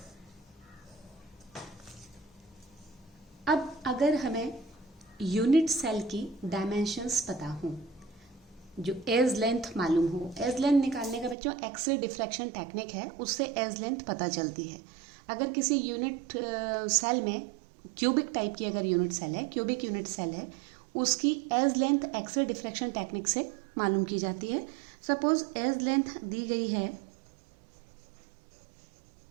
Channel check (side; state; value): left; drops out; at 11.4 s